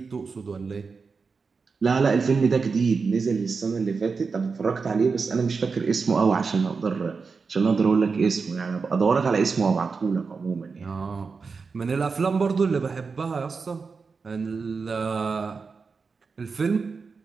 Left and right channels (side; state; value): left; quieter; 4.9 dB